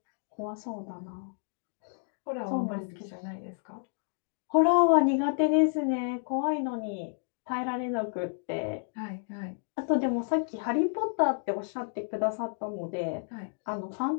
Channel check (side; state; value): right; silent; 57 dB below the other